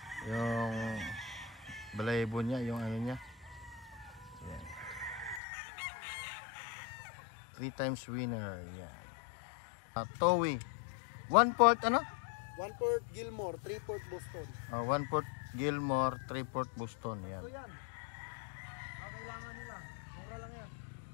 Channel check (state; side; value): drops out; right; at 5.4 s